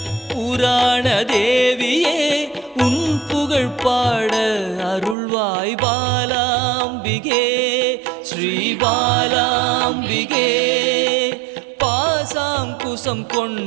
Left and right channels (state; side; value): drops out; left; at 5.2 s